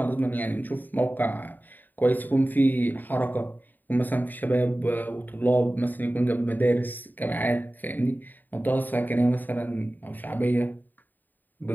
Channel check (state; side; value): late; right; 0.088 ms